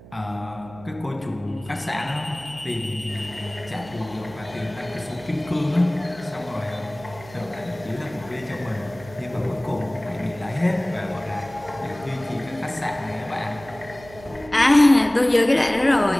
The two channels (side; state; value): right; noise; hum, 19 dB below the sound